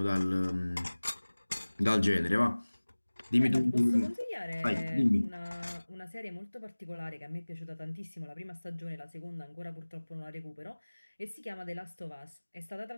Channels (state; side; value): inverted; both; correlation -1.00